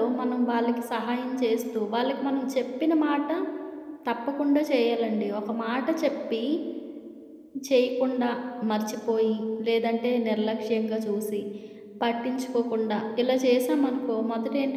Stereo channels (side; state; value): both; identical; correlation 1.00